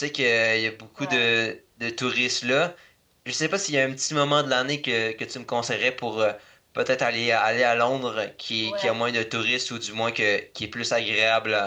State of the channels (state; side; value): identical; both; correlation 1.00